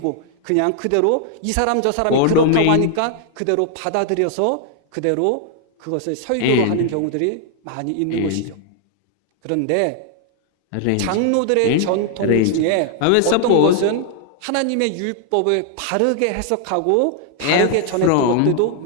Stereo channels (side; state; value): both; different; correlation 0.00